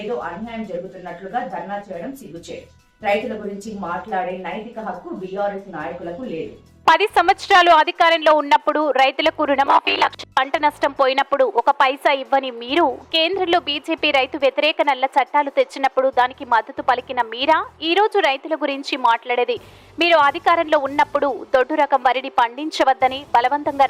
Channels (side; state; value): both; identical; correlation 1.00